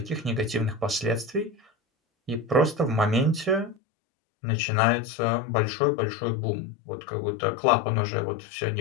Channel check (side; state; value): right; drops out; at 3.8 s